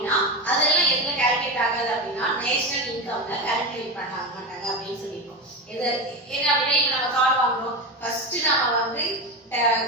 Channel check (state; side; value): normal; both; correlation 0.20